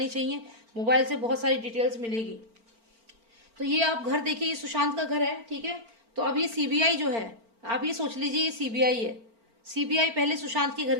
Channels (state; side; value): late; left; 4.4 ms